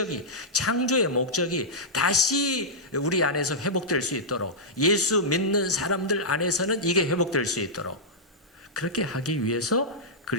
창조의 목적이 다시 우리 안에서 회복될 수 있도록, 예수 믿는 사람들 안에서는 이게 회복될 수 있도록 그렇게 하기 위해서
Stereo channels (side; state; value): both; normal; correlation -0.10